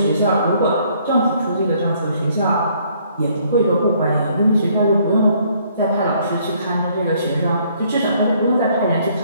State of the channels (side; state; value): both; inverted; correlation -0.64